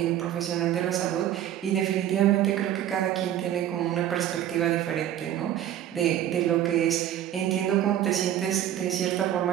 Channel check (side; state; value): left; quieter; 11.5 dB